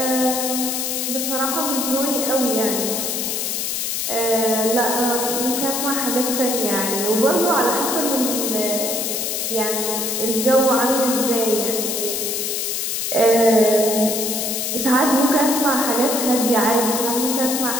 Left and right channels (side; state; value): left; noise; hiss, 1 dB below the sound